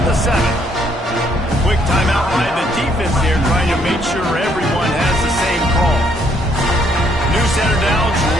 the 7. Quick timeout by the defense there, trying to make sure everyone has the same call. New center downs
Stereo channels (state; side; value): normal; both; correlation 0.69